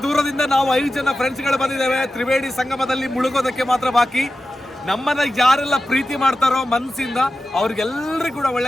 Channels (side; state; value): both; normal; correlation 0.93